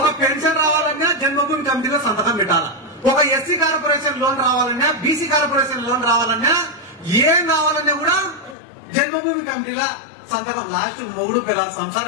పెన్షన్ రావాలన్నా జన్మభూమి కమిటీలో సంతకం పెట్టాలి. ఒక ఎస్సీ కార్పొరేషన్ లోన్ రావాలన్నా, బీసీ కార్పొరేషన్ లోన్ రావాలన్నా, ఏం కావాలన్నా కూడా జన్మభూమి కమిటీల సంతకం. లాస్ట్ మొగుడు పిల్ల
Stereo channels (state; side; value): drops out; right; at 8.6 s